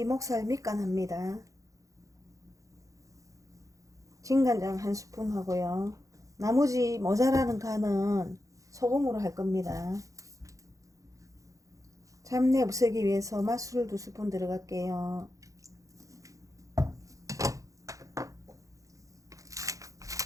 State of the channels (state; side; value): late; left; 0.16 ms